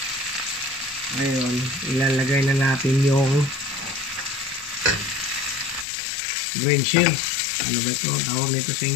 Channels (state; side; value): drops out; right; at 5.9 s